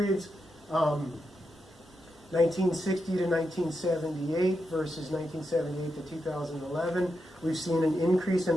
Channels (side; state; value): both; normal; correlation 0.86